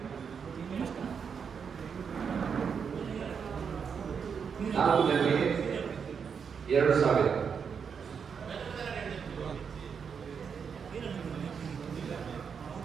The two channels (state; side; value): quieter; left; 6.5 dB